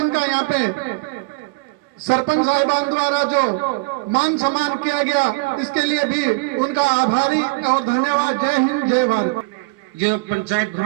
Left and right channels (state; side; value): quieter; left; 27.7 dB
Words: का यहाँ पे सरपंच साहिबान द्वारा जो मान सम्मान किया गया, इसके लिए भी उनका आभारी और धन्यवाद। जय हिंद, जय भारत। जो पंचायत